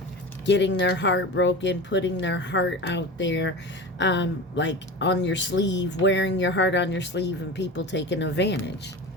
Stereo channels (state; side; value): normal; both; correlation 0.31